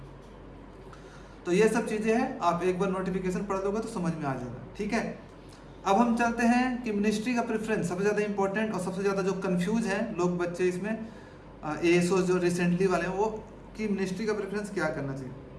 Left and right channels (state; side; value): identical; both; correlation 1.00